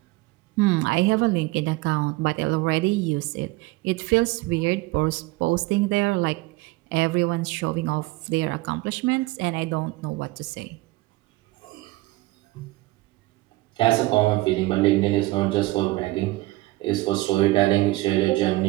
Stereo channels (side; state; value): left; quieter; 20.2 dB